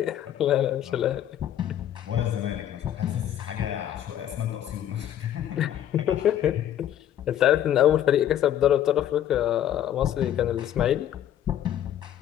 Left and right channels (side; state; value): right; quieter; 11.0 dB